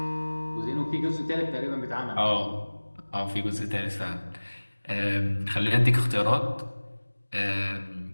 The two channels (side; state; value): both; inverted; correlation -1.00